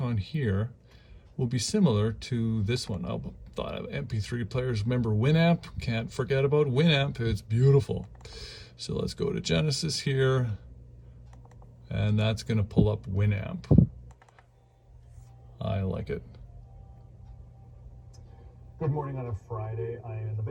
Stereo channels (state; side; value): identical; both; correlation 1.00